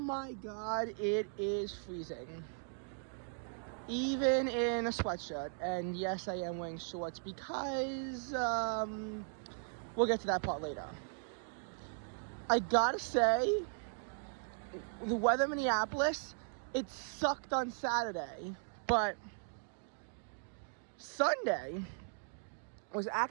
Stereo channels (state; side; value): silent; left; digital silence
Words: god, it is freezing. Even in a sweatshirt, and yes, I am wearing shorts because, we'll get to that part later. I gotta say, the weather in Minneapolis, it sucked on Saturday, but Sunday was